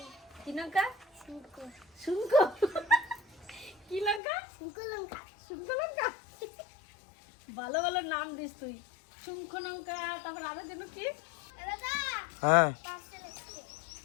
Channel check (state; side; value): drops out; right; at 4.2 s